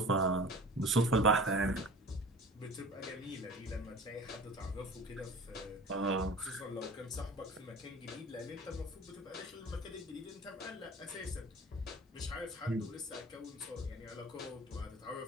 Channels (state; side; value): normal; both; correlation 0.40